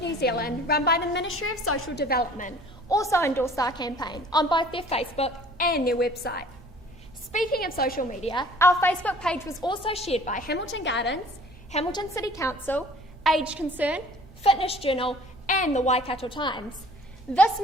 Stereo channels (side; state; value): both; normal; correlation 0.51